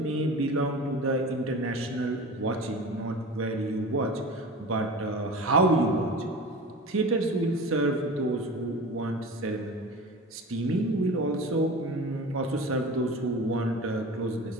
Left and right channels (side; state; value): both; normal; correlation 0.34